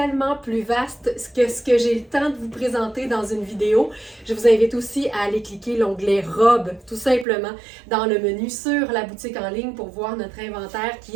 plus vaste que ce que j'ai le temps de vous présenter dans une vidéo. Je vous invite aussi à aller cliquer l'onglet Robe, tout simplement, dans le menu sur la boutique en ligne pour voir notre inventaire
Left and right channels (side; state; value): left; drops out; at 7.2 s